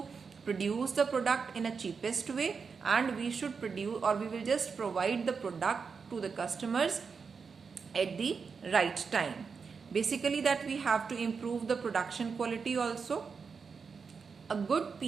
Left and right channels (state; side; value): quieter; left; 5.5 dB